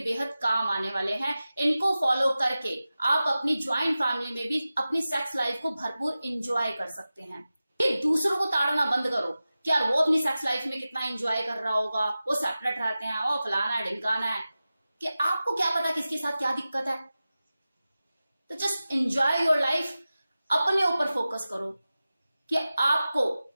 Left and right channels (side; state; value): both; inverted; correlation -0.95